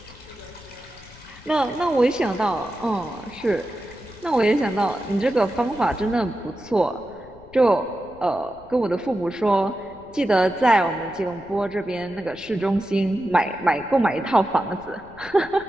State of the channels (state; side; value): noise; left; rumble, 22 dB below the sound